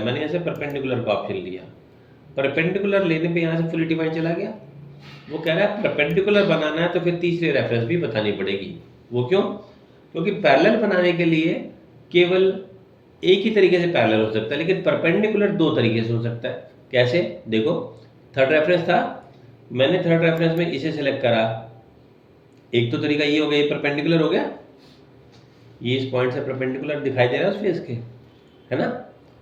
मैंने ऐसे परपेंडिकुलर का ऑप्शन लिया। परपेंडिकुलर लेने पे यहाँ से फुली डिफाइंड चला गया। वो कह रहा है परपेंडिकुलर बनाना है तो फिर तीसरी रेफरेंस भी बतानी पड़ेगी। वो क्यों? क्योंकि पैरेलल बनाने के लिए केवल एक ही तरीके से पैरेलल हो सकता है, लेकिन परपेंडिकुलर दो तरीके से हो सकता है। कैसे? देखो, थर्ड रेफरेंस था, मैंने थर्ड रेफरेंस में इसे सेलेक्ट करा, एक तो तरीका ये हो गया, ये परपेंडिकुलर हो गया, ये इस पॉइंट से परपेंडिकुलर दिखाई दे रहा है उस फेस के, है ना।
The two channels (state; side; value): identical; both; correlation 1.00